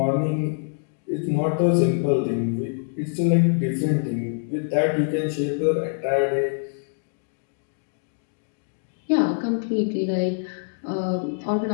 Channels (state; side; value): silent; right; digital silence